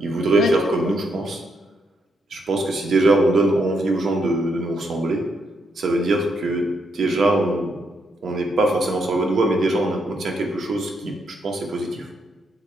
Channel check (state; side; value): normal; both; correlation 0.78